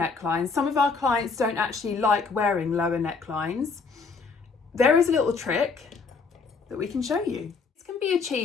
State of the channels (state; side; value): quieter; right; 4.7 dB